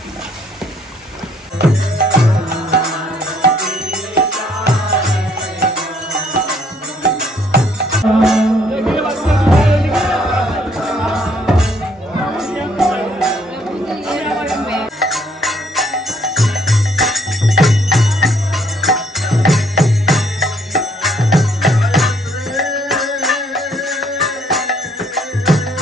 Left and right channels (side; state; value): both; normal; correlation 0.65